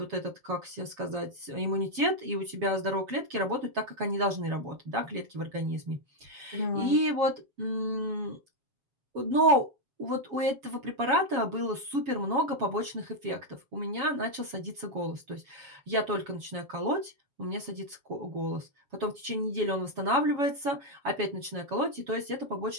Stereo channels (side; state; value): left; late; 7.2 ms